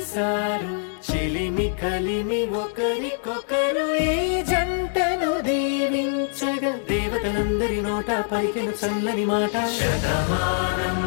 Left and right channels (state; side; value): silent; right; 59 dB below the other